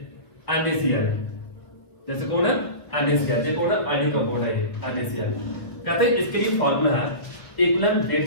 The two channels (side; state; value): right; late; 1.5 ms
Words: NaCl जैसे कौन है NaCl ये कौन है आयनिक कंपाउंड है ये NaCl कहते हैं इसके लिए फार्मूला है इक्विवेलेंट वेट